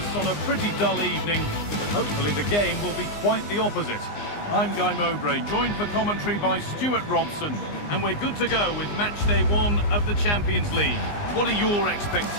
on a pretty dull evening, but hopefully the game will be quite the opposite. I'm Guy Mowbray, joined for commentary by Stuart Robson, and we're good to go with match day 1 of the Champions League. What are your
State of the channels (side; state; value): right; late; 19 ms